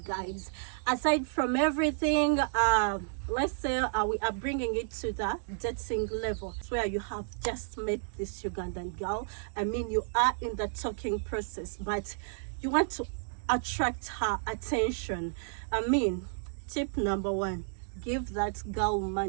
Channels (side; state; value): left; silent; digital silence